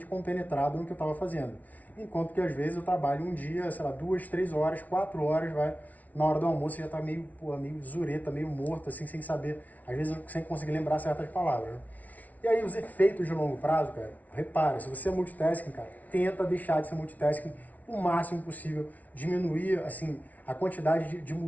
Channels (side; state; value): right; late; 0.073 ms